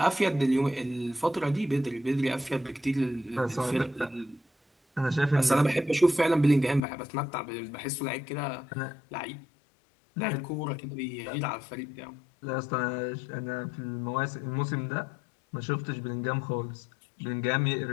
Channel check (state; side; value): drops out; right; at 6.8 s